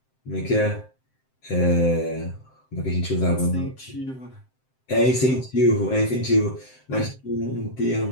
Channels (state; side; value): late; right; 7.7 ms